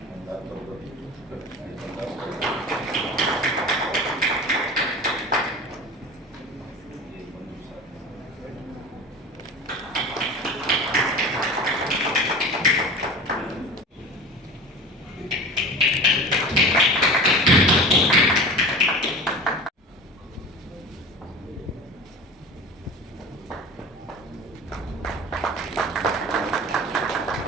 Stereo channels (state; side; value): normal; both; correlation 0.35